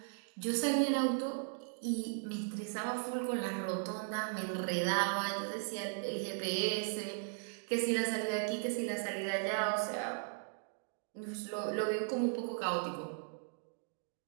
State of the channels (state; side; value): silent; left; digital silence